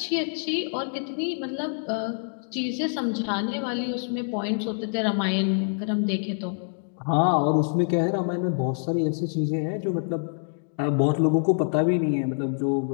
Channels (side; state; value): right; silent; digital silence